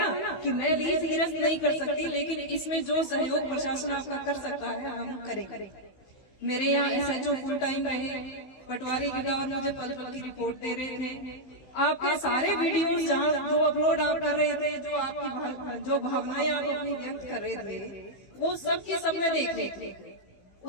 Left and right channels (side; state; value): right; late; 16 ms